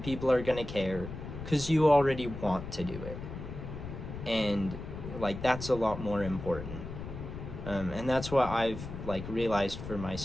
are gonna care, because you already want to do it. And that's a lot more important. And that's what I've realized for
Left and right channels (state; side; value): noise; left; rumble, 9 dB below the sound